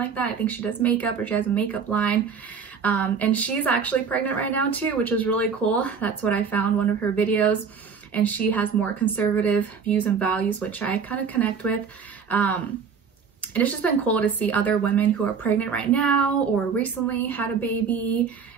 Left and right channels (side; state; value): left; quieter; 6.1 dB